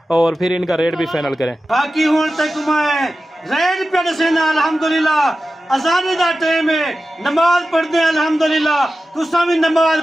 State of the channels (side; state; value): both; normal; correlation 0.94